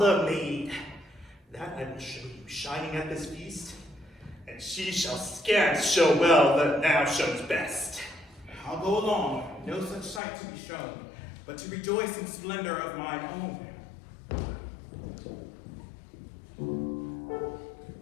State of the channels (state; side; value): drops out; right; at 10.2 s